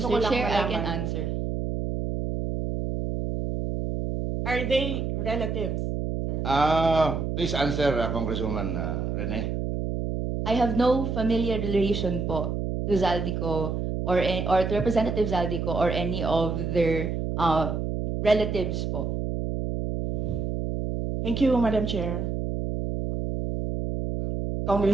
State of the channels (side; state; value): right; noise; hum, 2 dB below the sound